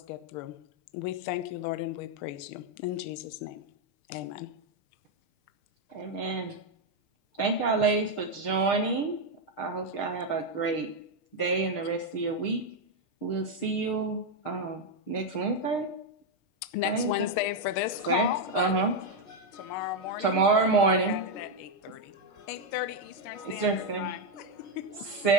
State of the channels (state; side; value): late; right; 6.6 ms